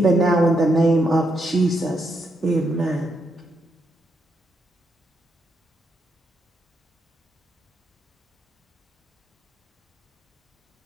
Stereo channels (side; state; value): both; normal; correlation 0.79